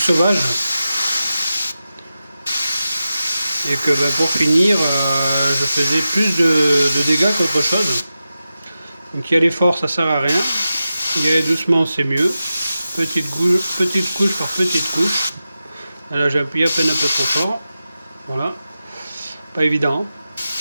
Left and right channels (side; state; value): both; inverted; correlation -0.92